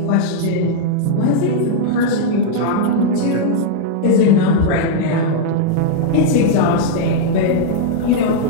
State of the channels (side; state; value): both; different; correlation -0.01